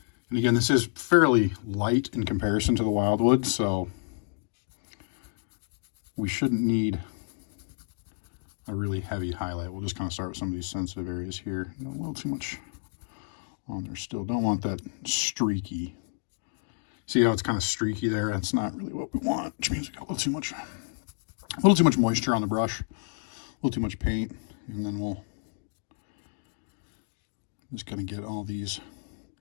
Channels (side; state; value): right; silent; digital silence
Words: And again, this is fairly light in comparison to the wildwood, so we shouldn't need a really heavy highlight. We'll just kind of start with some of these sensitive areas here. A little too much on there still. Don't want that streaky. See how it's kind of streaky there? That's not really what we want, which means we got a little too much moisture on the brush, a little too much paint, and then we'll just kind of get all these